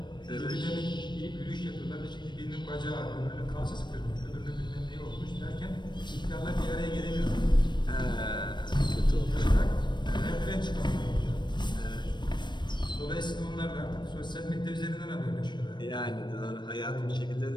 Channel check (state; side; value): late; right; 0.22 ms